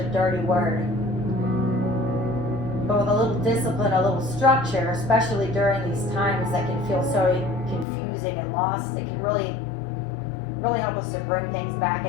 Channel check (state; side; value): drops out; right; at 7.9 s